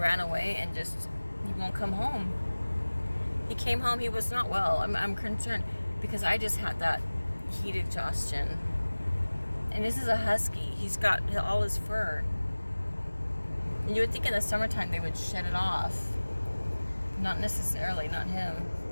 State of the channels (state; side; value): inverted; both; correlation -1.00